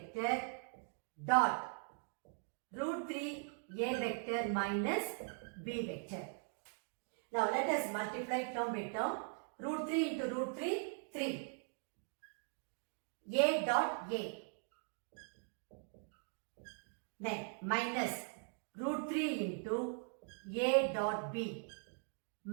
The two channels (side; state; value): left; silent; 51 dB below the other